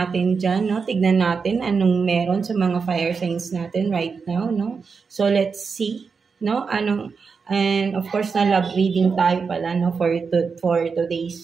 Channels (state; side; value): quieter; left; 5.3 dB